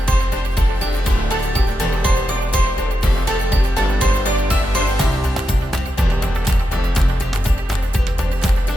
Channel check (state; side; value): normal; both; correlation 0.87